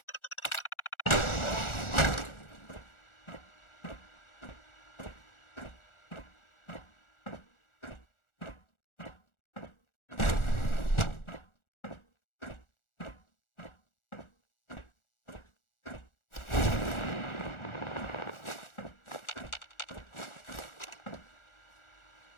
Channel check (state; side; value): late; right; 1.4 ms